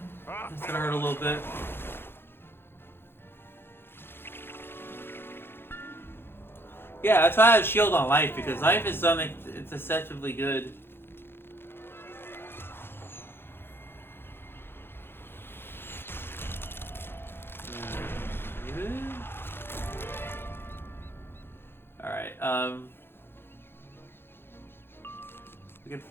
gonna hurt a little bit. Yeah, that's why I have shield on life, because life is something it's deceptively good. Alright, if we can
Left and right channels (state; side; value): late; right; 0.11 ms